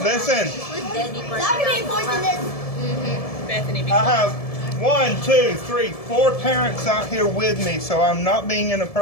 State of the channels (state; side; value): late; right; 1.7 ms